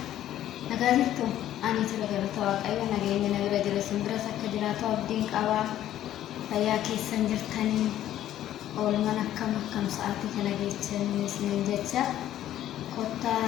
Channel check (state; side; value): quieter; right; 12.3 dB